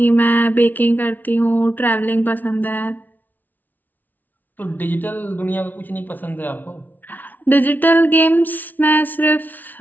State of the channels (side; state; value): right; late; 0.083 ms